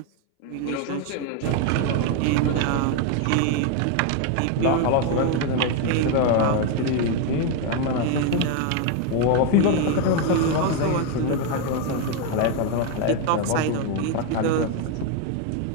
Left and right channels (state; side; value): different; both; correlation 0.01